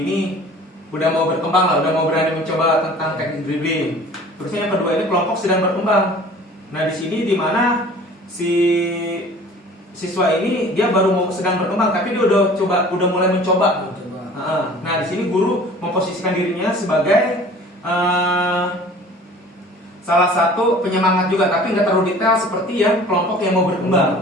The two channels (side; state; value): both; normal; correlation 0.46